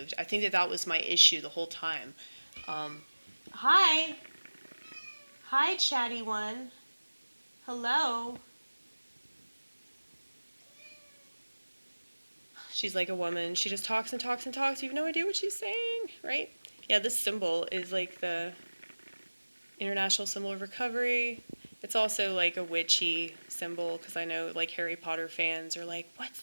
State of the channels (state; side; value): inverted; both; correlation -1.00